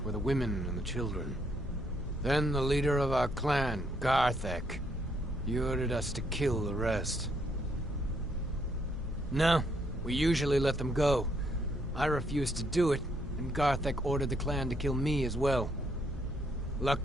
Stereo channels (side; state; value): both; normal; correlation 0.72